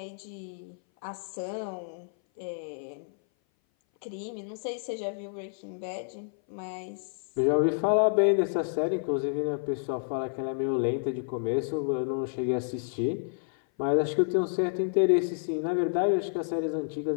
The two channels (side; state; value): right; silent; 57 dB below the other